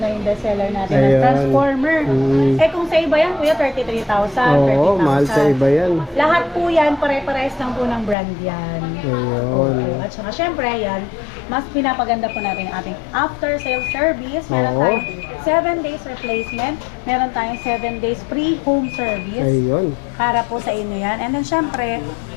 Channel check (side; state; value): right; drops out; at 8.2 s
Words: yung bestseller natin na Ayun. Transformer. Eh kung sa iba yan kuya 33,000, 30,000. Oo, mahal sa iba yan. Lahat po yan, pare-pares lang po ng brand yan. Ayun. At saka syempre yan, mas pinapaganda po natin ang ating after sales service. Meron Oo. tayong 7 days replacement. Meron tayong 7 days free home service. Ayun. Para po sa inyo yan. And then syempre,